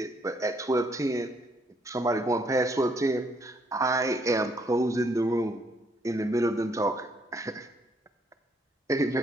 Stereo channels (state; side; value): normal; both; correlation 0.70